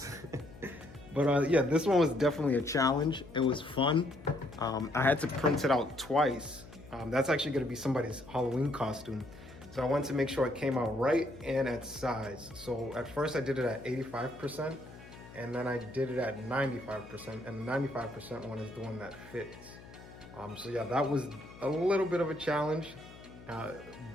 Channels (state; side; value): noise; left; hum, 18 dB below the sound